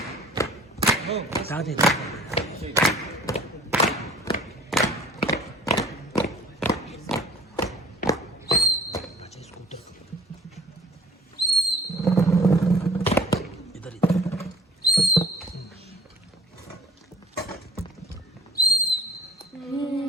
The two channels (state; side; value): normal; both; correlation 0.50